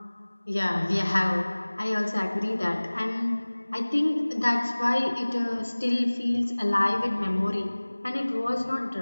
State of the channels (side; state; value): both; inverted; correlation -1.00